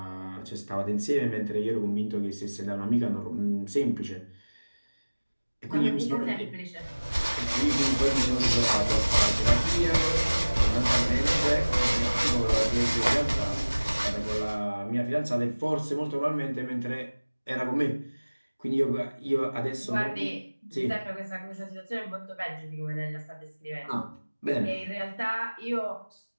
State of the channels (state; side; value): inverted; both; correlation -1.00